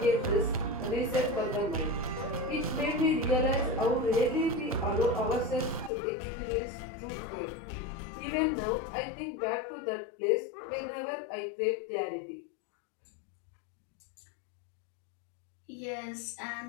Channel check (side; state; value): right; drops out; at 5.9 s